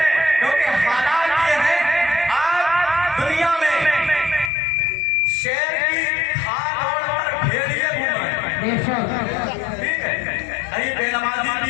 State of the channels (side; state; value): right; drops out; at 4.5 s